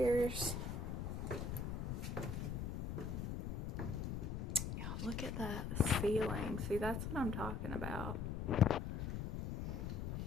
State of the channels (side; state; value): left; noise; rumble, 3 dB below the sound